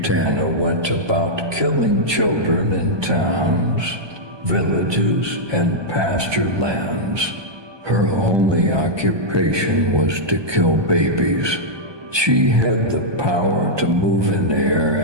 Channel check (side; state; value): left; late; 1.2 ms